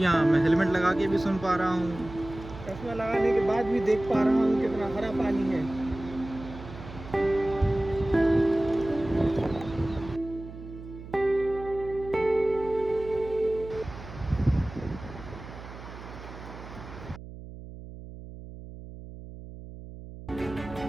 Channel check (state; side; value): noise; right; hum, 13 dB below the sound